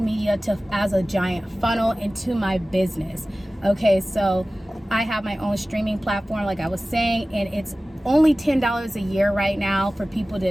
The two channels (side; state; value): both; normal; correlation 0.97